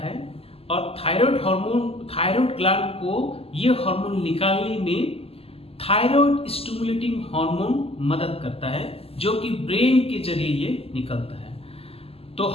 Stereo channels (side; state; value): right; late; 0.28 ms